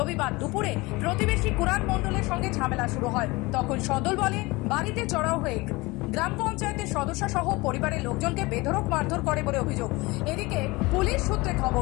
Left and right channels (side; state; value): right; quieter; 22.9 dB